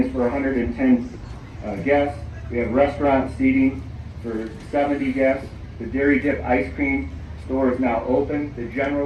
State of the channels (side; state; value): both; identical; correlation 1.00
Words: is for 110 guests. We have restaurant seating for 70 guests. The Dairy Dip ice cream store is now open. The